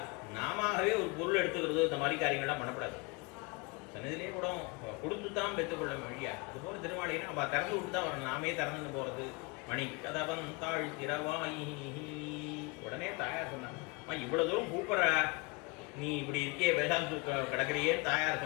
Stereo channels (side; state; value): right; quieter; 27.5 dB